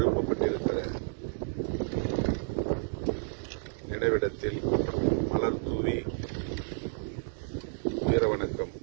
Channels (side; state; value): left; silent; digital silence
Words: நினைவிடத்தில் மலர் தூவி வீர வணக்கம்